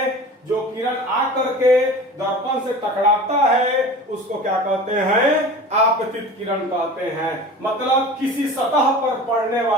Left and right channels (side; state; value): both; normal; correlation 0.37